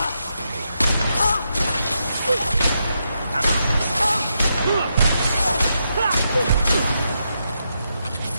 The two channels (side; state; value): both; inverted; correlation -0.83